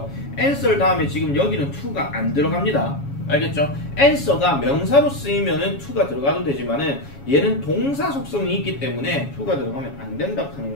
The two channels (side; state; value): right; late; 7.2 ms